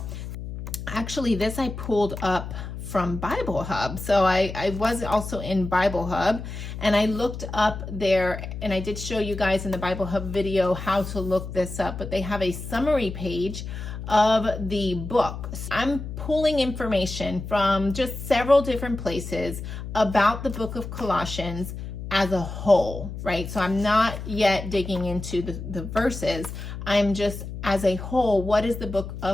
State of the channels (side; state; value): left; noise; hum, 8 dB below the sound